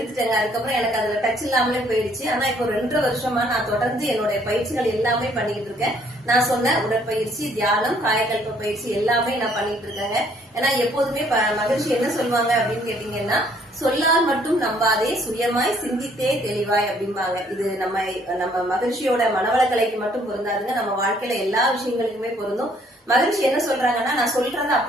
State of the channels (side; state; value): both; normal; correlation 0.64